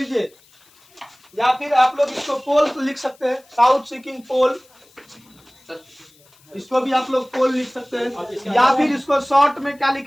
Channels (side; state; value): left; noise; hiss, 30 dB below the sound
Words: या फिर आप लोग इसको पोल लिख सकते हैं, साउथ सीकिंग पोल, इसको भी आप लोग पोल लिख सकते हैं। या फिर इसको शॉर्ट में क्या